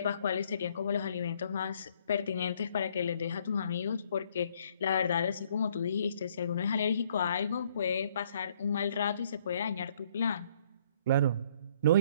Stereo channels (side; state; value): both; inverted; correlation -0.65